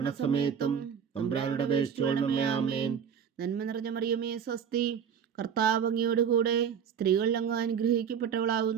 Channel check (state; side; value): quieter; left; 7.7 dB